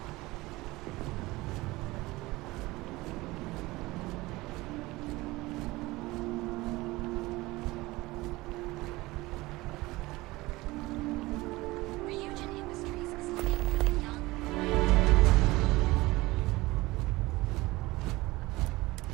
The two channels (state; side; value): quieter; left; 20.3 dB